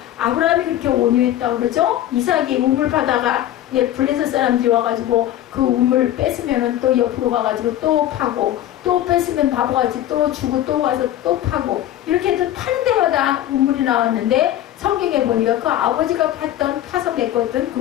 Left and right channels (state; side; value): quieter; right; 12.7 dB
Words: 아브라함이 그렇게 온유했다고 그러죠. 이삭이 우물 파다가 블레셋 사람들이 와가지고 그 우물 뺏으면 또 옆으로 가가지고 또 파고, 또 뺏으면 바보같이 또 주고 또 가서 또 파고, 이렇게 해서 파는 데마다 우물이 나왔는데 성경에 보니까 그 아버지가 파서 메꿨던